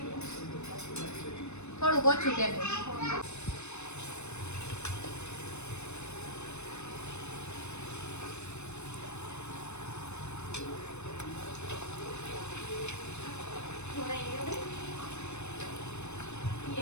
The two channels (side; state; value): right; late; 0.81 ms